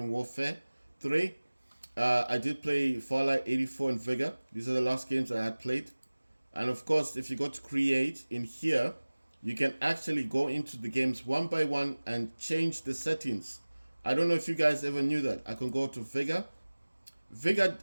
Warfare 3. I did play Fallout 84 and Vega. These are the last games I had played. And of course, if you go to create in here, you can actually go into the games one by one and change the settings. I don't know if you guys ever knew that. I can go to Vega. Vega,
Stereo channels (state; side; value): inverted; both; correlation -1.00